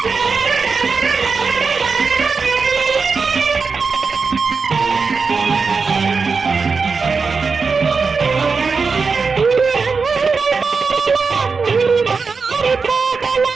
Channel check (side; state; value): left; quieter; 4.8 dB